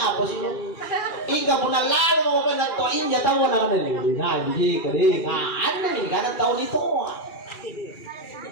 sih lo? Ika pun lalo mo penatoin ya tahu na kanila. Nah, hindi ka rin. Ano ni kada tahu ditoa.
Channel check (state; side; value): late; right; 2.4 ms